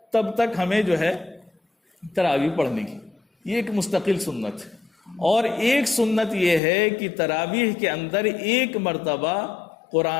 تب تک ہمیں جو ہے تراویح پڑھنے کی، یہ ایک مستقل سنت ہے۔ اور ایک سنت یہ ہے کہ تراویح کے اندر 1 مرتبہ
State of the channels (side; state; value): right; drops out; at 6.6 s